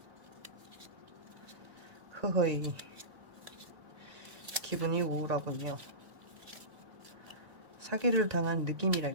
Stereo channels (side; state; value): left; late; 1.9 ms